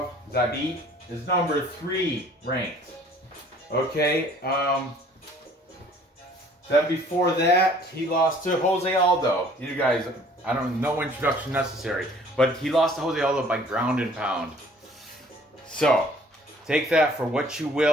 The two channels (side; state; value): both; normal; correlation 0.55